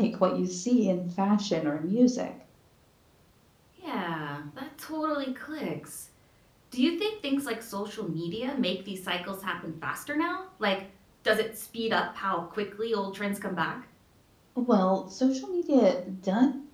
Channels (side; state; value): both; identical; correlation 1.00